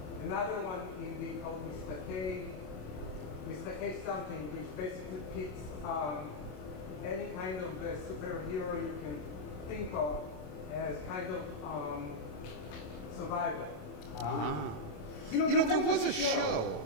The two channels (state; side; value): late; right; 27 ms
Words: another one indie called Mr. K something, which basically pits any kind of superhero you can think of as kind of survival. You know, there was a show.